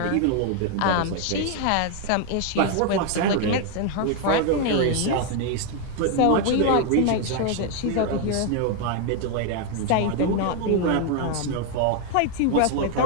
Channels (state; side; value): different; both; correlation 0.01